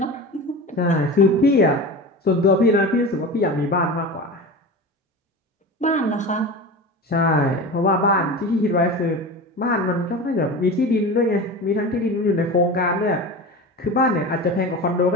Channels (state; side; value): normal; both; correlation 0.29